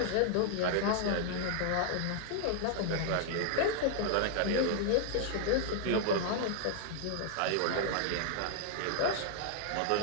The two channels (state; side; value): different; both; correlation 0.00